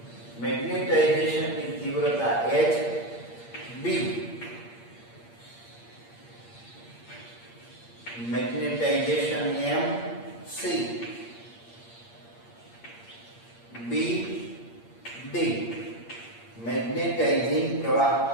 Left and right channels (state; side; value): late; right; 8.6 ms